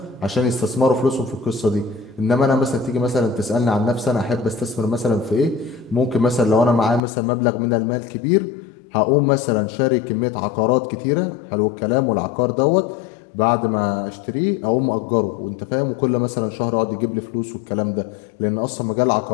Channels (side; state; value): right; drops out; at 7.0 s